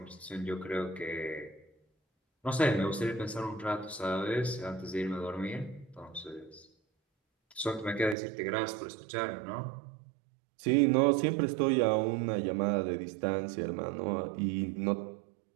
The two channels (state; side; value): drops out; left; at 8.2 s